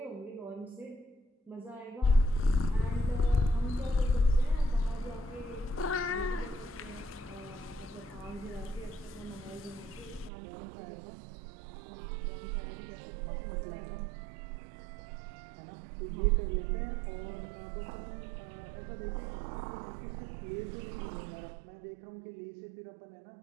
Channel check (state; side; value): drops out; left; at 10.3 s